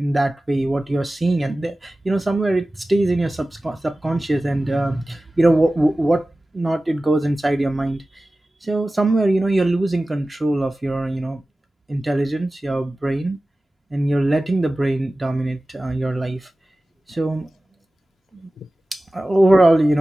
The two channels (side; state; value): both; normal; correlation 0.96